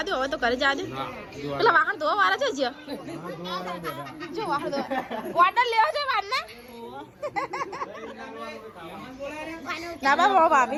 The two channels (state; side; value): identical; both; correlation 1.00